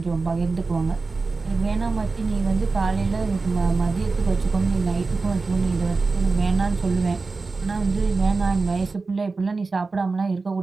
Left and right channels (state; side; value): quieter; left; 4.0 dB